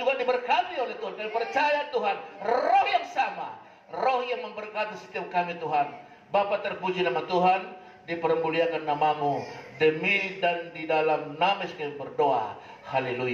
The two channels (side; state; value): both; identical; correlation 1.00